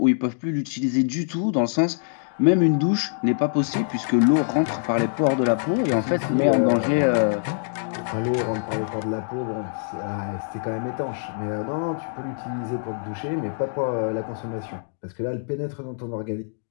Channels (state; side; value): silent; right; digital silence